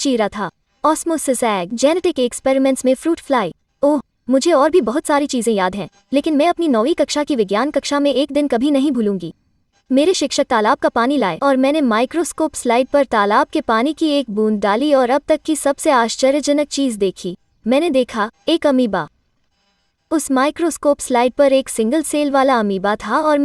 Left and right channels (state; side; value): identical; both; correlation 1.00